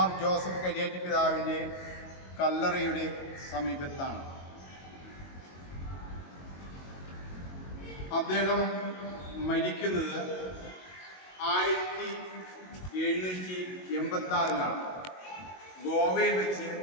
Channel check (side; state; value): right; late; 22 ms